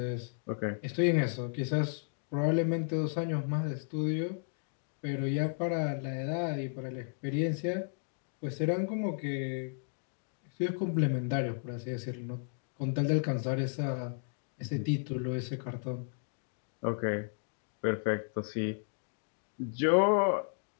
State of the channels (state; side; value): silent; right; digital silence